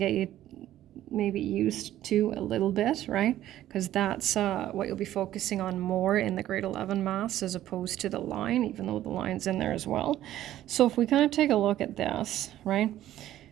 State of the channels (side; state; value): left; quieter; 13.1 dB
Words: you maybe used to a little bit, right? Because that's what you'll be focusing on more in the grade 11 maths as opposed to the line, even though the line's in there as well. So if we kind of take a look at this, right?